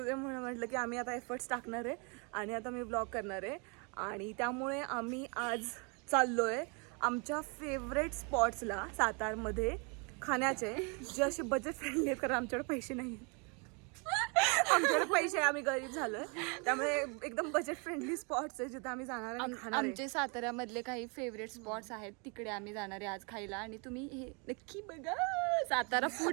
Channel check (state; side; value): quieter; left; 33.6 dB